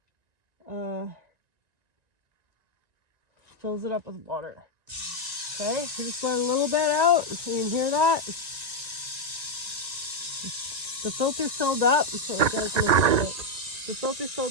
fills it up with water. Okay, so just let a little bit out so you can hear that. The filter filled up, so it does make it. The filter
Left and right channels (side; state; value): left; late; 1.9 ms